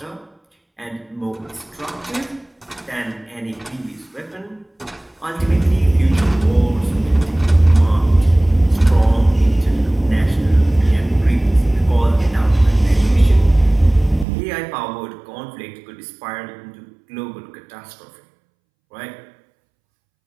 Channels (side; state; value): left; drops out; at 14.2 s